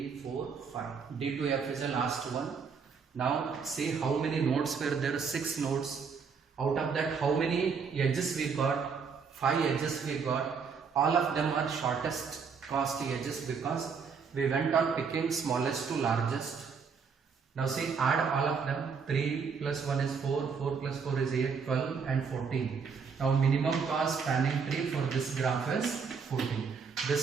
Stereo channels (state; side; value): quieter; left; 5.8 dB